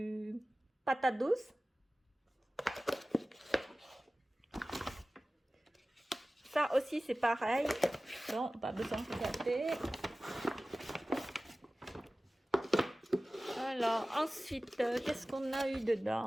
patate douce. Ça aussi, c'est pareil. Non, pas besoin de regarder. Alors, ensuite, qu'est-ce qu'on a eu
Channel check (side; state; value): both; normal; correlation 0.97